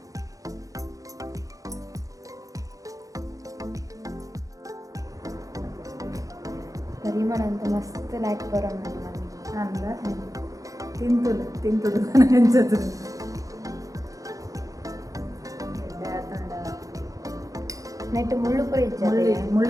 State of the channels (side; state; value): left; late; 0.16 ms